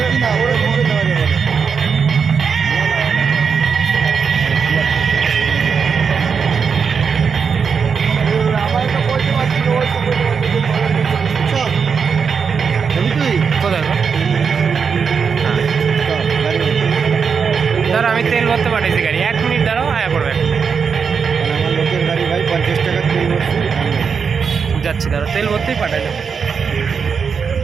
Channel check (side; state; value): left; quieter; 6.1 dB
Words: কিনা ওরা মনে দেওয়া যাবে না। আমার একটা পয়সা পাচ্ছিল ওই তো কোথায় গো? ধরো আমি তেল ভরতে পাঠাইছি গাড়ি, 1 মিনিট দাঁড়াও, আয়া পড়বে। আমার লোকের গাড়ি ভাই 50 টাকা তেল ভরছি যাচ্ছি, ধরো তেল ভরতেই পাঠাইলাম।